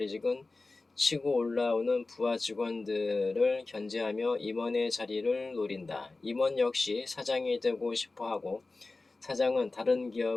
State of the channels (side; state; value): right; quieter; 3.4 dB